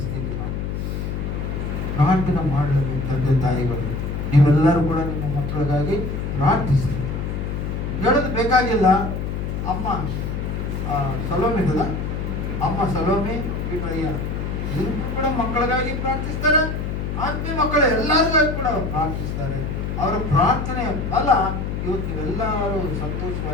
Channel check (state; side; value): noise; left; hum, 3 dB below the sound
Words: ಪ್ರಾರ್ಥನೆ ಮಾಡಬೇಕು. ತಂದೆ ತಾಯಿಗಳು ನೀವೆಲ್ಲರೂ ಕೂಡ ನಿಮ್ಮ ಮಕ್ಕಳಿಗಾಗಿ ಪ್ರಾರ್ಥಿಸಿ. ಹೇಳೋದು ಬೇಕಾಗಿಲ್ಲ. ಅಮ್ಮ ಸಲೋಮಿ ಇದಲ್ಲ, ಅಮ್ಮ ಸಲೋಮಿ ಬಿಟ್ರಯ್ಯ ಇವರು ಕೂಡ ಮಕ್ಕಳಿಗಾಗಿ ಪ್ರಾರ್ಥಿಸ್ತಾರೆ. ಆತ್ಮೀಯ ಮಕ್ಕಳು ಎಲ್ಲರಿಗಾಗಿ ಕೂಡ ಪ್ರಾರ್ಥಿಸ್ತಾರೆ. ಅವರ ಪ್ರಾರ್ಥನೆಯ ಫಲ ಇವತ್ತು ನೀವೆಲ್ಲರೂ